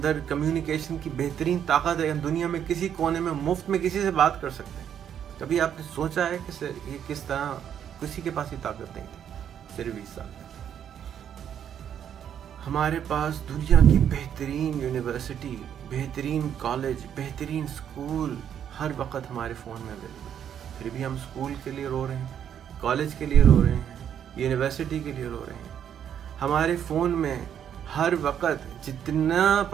کمیونیکیشن کی بہترین طاقت ہے. ہم دنیا میں کسی کونے میں مفت میں کسی سے بات کر سکتے ہیں. کبھی آپ نے سوچا ہے کہ یہ کس طرح کسی کے پاس ہی طاقت نہیں تھی صرف 20 سال پہلے. ہمارے پاس دنیا کی بہترین یونیورسٹی، بہترین کالج، بہترین اسکول ہر وقت ہمارے فون میں اویلیبل ہے. پھر بھی ہم اسکول کے لیے رو رہے ہیں، کالج کے لیے رو رہے ہیں، یونیورسٹی کے لیے رو رہے ہیں. ہمارے فون میں ہر وقت جتنا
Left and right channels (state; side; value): quieter; left; 9.1 dB